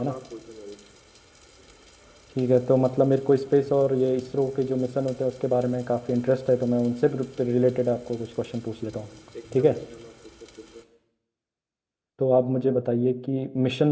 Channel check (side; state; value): both; identical; correlation 1.00